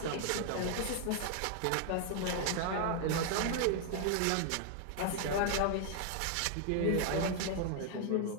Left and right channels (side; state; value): both; different; correlation 0.00